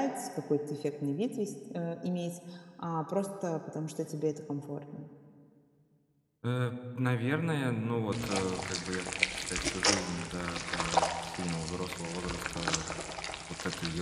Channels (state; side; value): identical; both; correlation 1.00